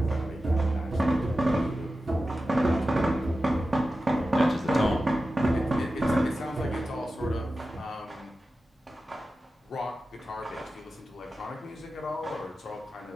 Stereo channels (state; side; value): normal; both; correlation 0.93